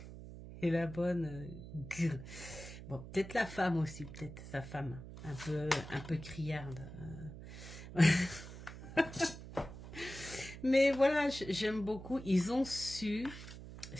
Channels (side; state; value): right; noise; hum, 12 dB below the sound